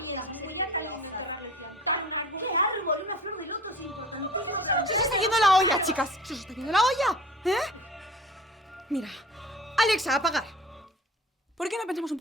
Muy alta. ¡Qué árbol! Una flor de loto es importantísimo. ¡Se os está yendo la olla, chicas! ¡Se os está yendo la olla! Mira, Alexa, apagar. ¿Por qué no pensamos un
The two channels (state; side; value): normal; both; correlation 0.41